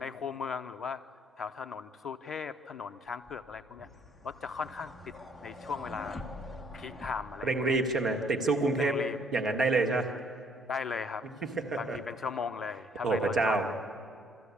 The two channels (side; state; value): both; normal; correlation 0.63